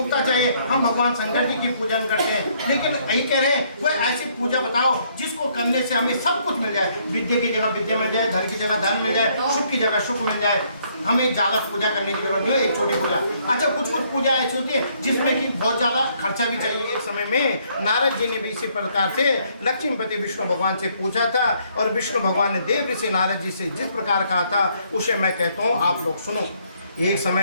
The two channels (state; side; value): inverted; both; correlation -0.68